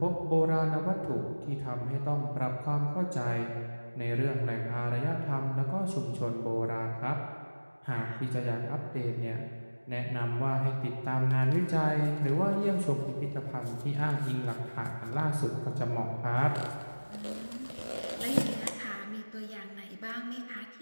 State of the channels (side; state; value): both; inverted; correlation -1.00